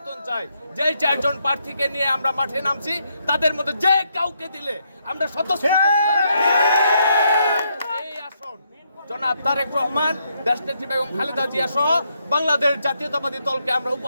চাই। যে 4 জন প্রার্থীকে নিয়ে আমরা মাঠে নামছি তাদের মধ্যে যে কাউকে দিলে আমরা এই আসন জনাব তারেক রহমান, দেশনেত্রী বেগম খালেদা জিয়া সহ বাংলাদেশ জাতীয়তাবাদী দলকে আমরা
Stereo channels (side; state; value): both; inverted; correlation -0.77